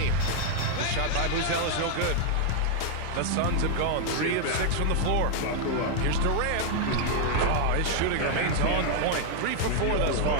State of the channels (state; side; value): different; both; correlation 0.00